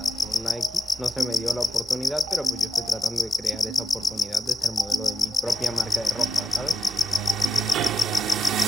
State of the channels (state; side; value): normal; both; correlation 0.83